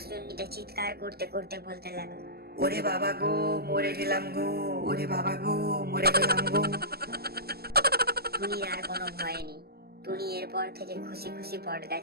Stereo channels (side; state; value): left; late; 0.46 ms